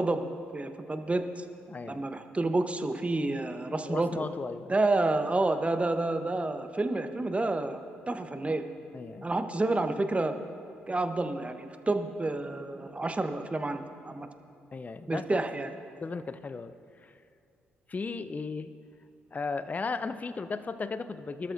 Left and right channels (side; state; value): both; normal; correlation 0.90